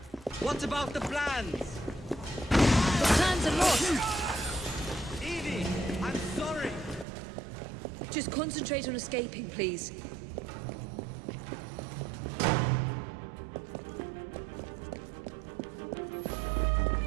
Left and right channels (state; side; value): drops out; left; at 7.1 s